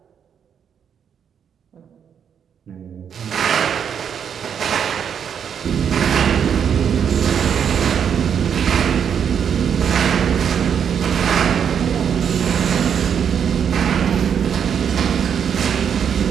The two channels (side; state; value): left; quieter; 7.9 dB